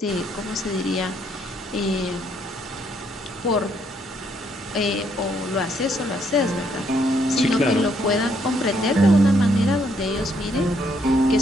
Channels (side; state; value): both; normal; correlation 0.71